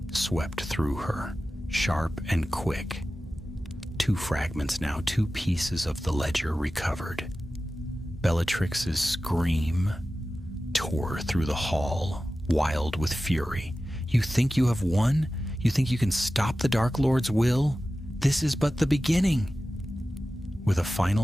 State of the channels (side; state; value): both; normal; correlation 0.95